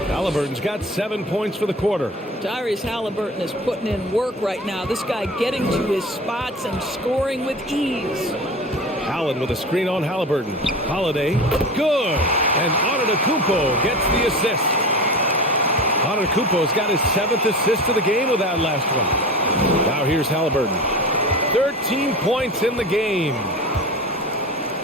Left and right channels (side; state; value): both; normal; correlation 0.32